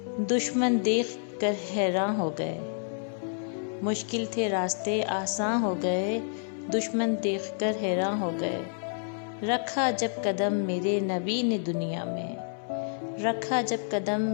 دشمن دیکھ کر حیران ہو گئے۔ مشکل تھے راستے آساں ہو گئے، دشمن دیکھ کر حیران ہو گئے۔ رکھا جب قدم میرے نبی نے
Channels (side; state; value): right; silent; 59 dB below the other